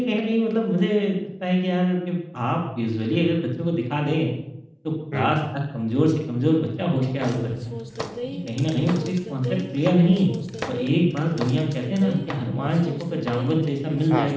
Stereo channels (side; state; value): both; identical; correlation 1.00